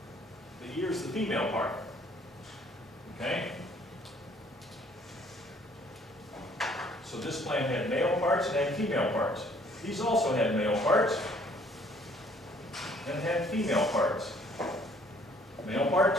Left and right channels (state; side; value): normal; both; correlation 0.60